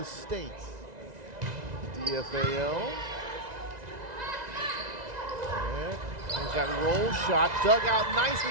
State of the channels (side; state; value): left; late; 2.0 ms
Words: state, DFAL. And there's that roll shot, dug out